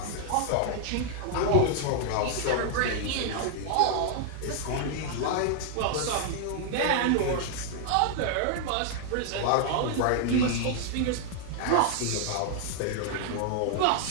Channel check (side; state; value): both; different; correlation 0.00